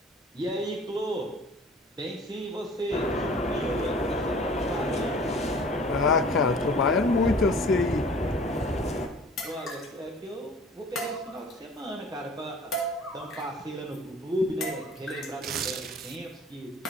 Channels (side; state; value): both; normal; correlation 0.47